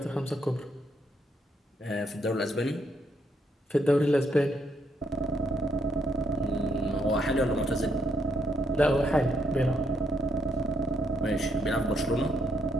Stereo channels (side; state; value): both; normal; correlation 0.75